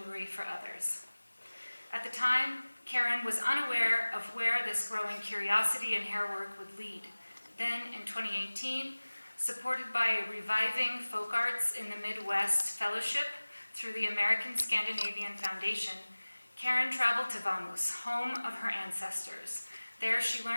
for others. At the time, Karen was unaware of where this growing curiosity in hairwork would lead. Then, in 2018, supported by a reviving folk arts in the Midwest fellowship through the American Scandinavian Foundation, Karen traveled to Vamhus, home of her ancestors. There she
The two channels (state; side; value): inverted; both; correlation -1.00